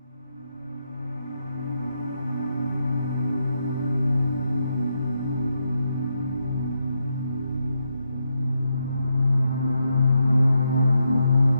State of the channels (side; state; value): both; inverted; correlation -0.82